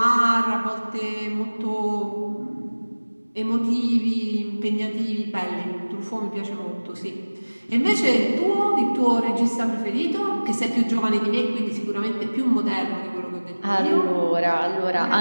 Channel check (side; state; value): both; inverted; correlation -1.00